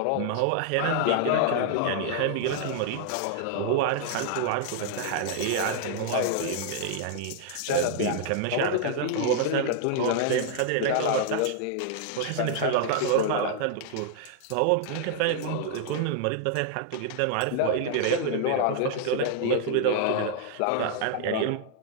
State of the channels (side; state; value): both; different; correlation -0.01